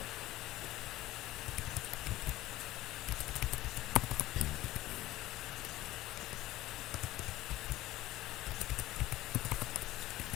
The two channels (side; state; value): right; quieter; 16.4 dB